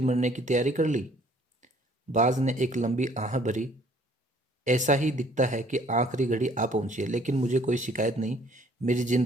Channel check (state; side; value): normal; both; correlation 0.58